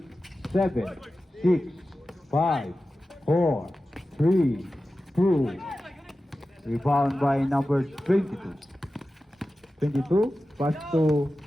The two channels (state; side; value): normal; both; correlation 0.94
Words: 7, 6, 5, 4, 3, 2. Rebound by number 22. 22, pass to